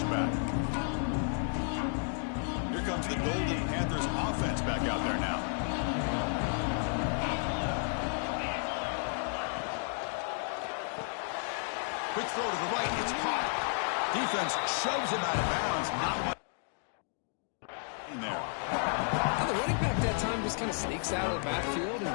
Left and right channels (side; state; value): right; silent; 56 dB below the other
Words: Here comes the Golden Panthers offense back out there now. Quick throw to the right, it's caught. Defense shoves him out of bounds. Not much in there. Now the running back that time just kind of sneaks out of the backfield